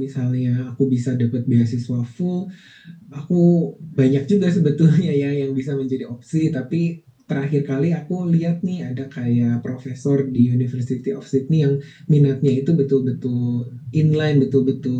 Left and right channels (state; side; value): identical; both; correlation 1.00